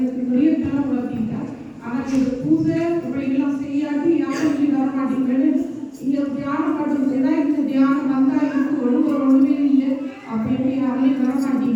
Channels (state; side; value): identical; both; correlation 1.00